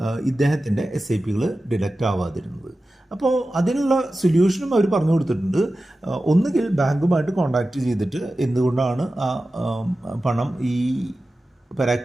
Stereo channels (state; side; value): normal; both; correlation 0.94